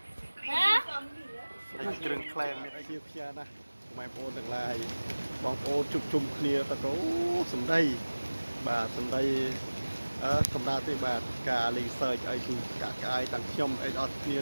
ហ៎ គ្រឿងក្លែមមានអីជាផ្ញើណាម៉ែបងប្អូនទាំងឡាយបងប្អូនជុំជុំគ្នាទៅអូសំដីបាទសំដីសម្រាប់ទេបាទការលេងសើចអីគឺកាក់កាយទាំងខ្ញុំអីអត់គ្នា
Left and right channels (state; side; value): inverted; both; correlation -1.00